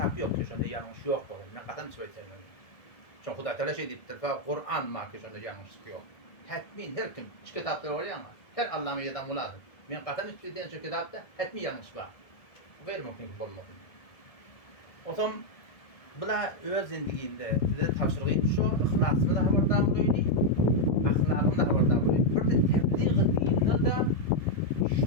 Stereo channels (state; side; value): late; right; 1.6 ms